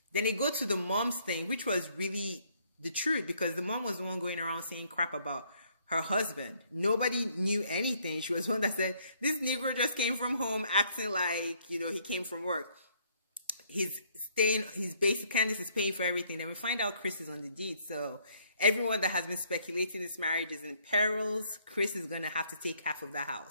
Then they go to the mom's thing, which was really the truth, because the mom was the one going around saying crap about her husband. Nobody knew anything. She was one that said, this Negro just came from home acting like, you know, he came from work. He's basic, Candice is paying for everything. And we find out Chris is on the deed. So everyone that has been speculating this marriage is in perils. Chris is going to have to take half of the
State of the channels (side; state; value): both; inverted; correlation -0.66